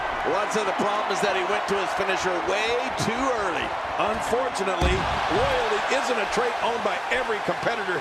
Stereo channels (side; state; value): both; identical; correlation 1.00